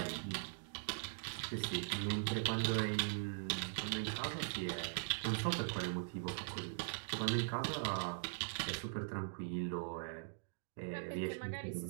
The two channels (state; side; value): silent; left; digital silence